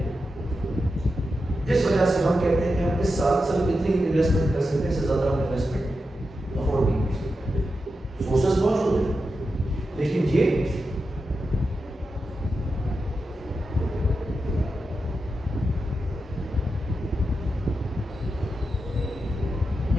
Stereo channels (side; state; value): both; normal; correlation 0.89